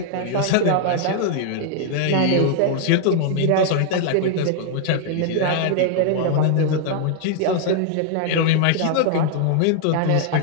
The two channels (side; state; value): both; different; correlation 0.00